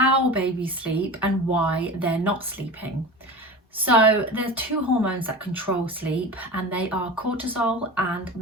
babies sleep and why they're not sleeping. So there's two hormones that control sleep, and they are cortisol and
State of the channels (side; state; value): both; normal; correlation 0.31